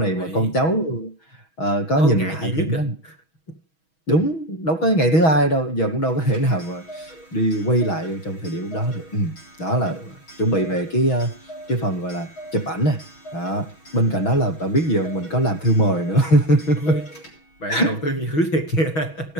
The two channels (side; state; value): right; late; 6.2 ms